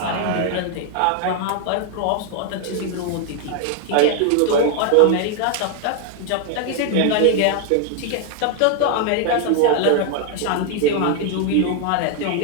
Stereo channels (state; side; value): different; both; correlation 0.00